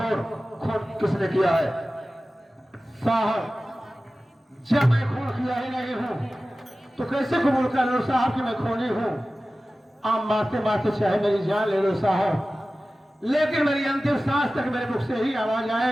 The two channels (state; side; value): normal; both; correlation 0.96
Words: खून किसने किया है? साहब जब मैं खून किया ही नहीं हूँ तो कैसे कबूल कर लो साहब कि मैं खूनी हूँ? आप मारते मारते चाहे मेरी जान ले लो साहब, लेकिन मेरी अंतिम सांस तक मेरे मुख से ही आवाज